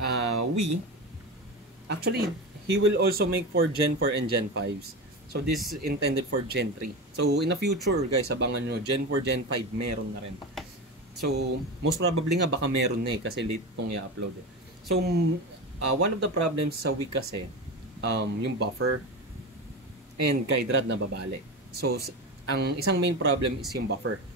Wii, actually, he will also make for Gen 4 and Gen 5s. So, this is intended for Gen 3. So, in the future, guys, abangan nyo, Gen 4, Gen 5, meron na rin. So, most probably nga, baka meron na kasi late itong i-upload eh. So, one of the problems sa Wii kasi, yung buffer and guide rod na babali. So, ang isang main problem is yung buffer,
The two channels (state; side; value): normal; both; correlation 0.23